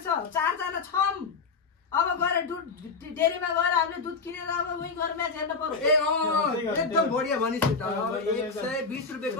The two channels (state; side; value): quieter; right; 4.7 dB